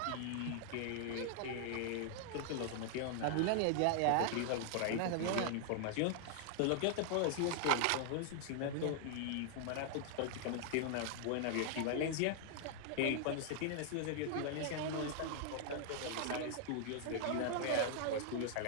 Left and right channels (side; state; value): both; different; correlation 0.00